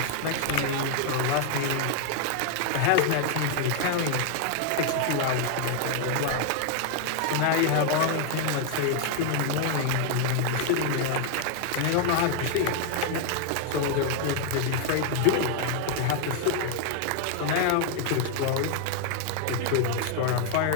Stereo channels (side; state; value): both; different; correlation 0.00